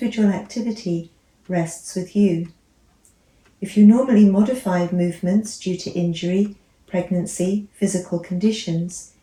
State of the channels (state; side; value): identical; both; correlation 1.00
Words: activity rests with you. If you normally modify movements due to injury, pregnancy, physical conditions,